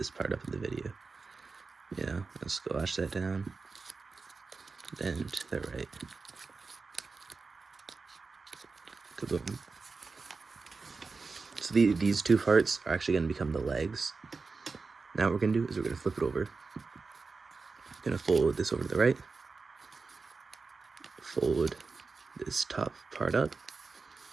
part up in the video. You know, let's squash that down. Then to the right. Kaboom. So these 2 parts are actually going to become the legs. Now what we're going to do is we're going to flip it over. Going to fold this over to the right. Fold this top part up.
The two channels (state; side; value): quieter; left; 4.3 dB